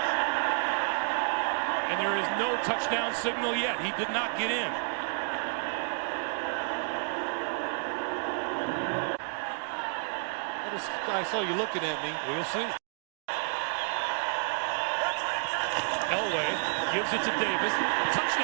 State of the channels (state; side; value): silent; left; digital silence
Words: And there is no touchdown signal yet. He did not get in. I saw you looking at me. We'll see. Elway gives it to Davis.